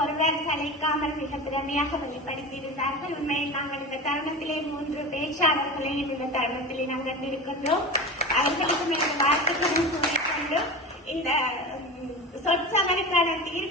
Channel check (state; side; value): normal; both; correlation 0.29